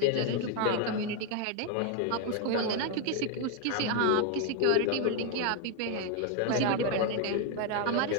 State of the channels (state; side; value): different; both; correlation 0.01